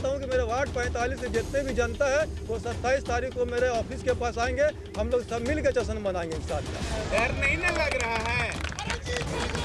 हूं कि मेरे वार्ड 45 से जितने भी जनता है वो 27 तारीख को मेरे ऑफिस के पास आएंगे। हम लोग सब मिल के जश्न मनाएंगे इंशाअल्लाह। डर नहीं ना लग रहा है?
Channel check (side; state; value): both; identical; correlation 1.00